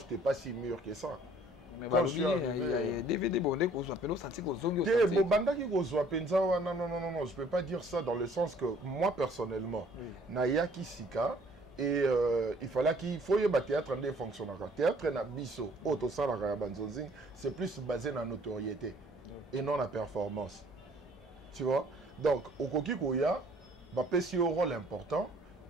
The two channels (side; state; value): both; normal; correlation 0.58